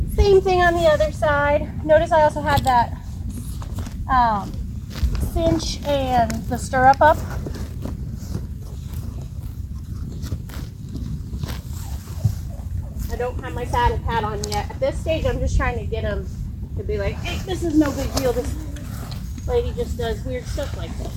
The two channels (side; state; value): both; identical; correlation 1.00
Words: Same thing on the other side. Notice I also had that cinch and the stirrup up. I don't have my saddle pad on yet. At this stage, I'm just trying to get him to be like, hey, this is no big deal. This lady just does weird stuff like